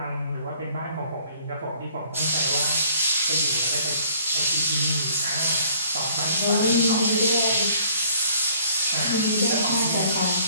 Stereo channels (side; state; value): both; inverted; correlation -0.59